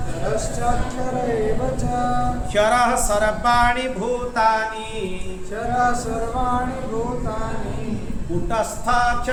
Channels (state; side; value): identical; both; correlation 1.00